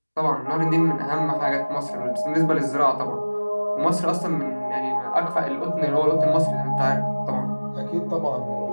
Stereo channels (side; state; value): both; inverted; correlation -1.00